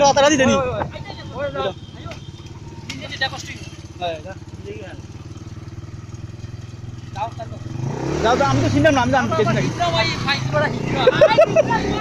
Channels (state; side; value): identical; both; correlation 1.00